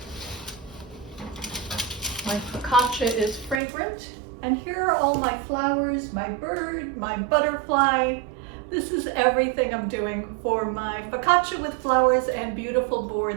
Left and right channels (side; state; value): left; drops out; at 3.6 s